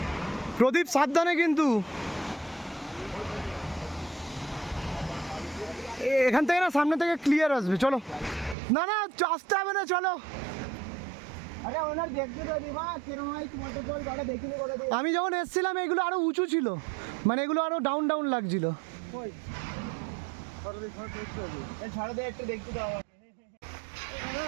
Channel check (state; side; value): drops out; left; at 8.6 s